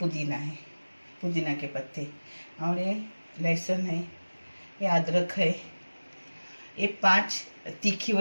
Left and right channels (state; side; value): inverted; both; correlation -1.00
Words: है, पुदीना के पत्ते, और ये लहसुन है, ये अदरक है, ये 5 तीखी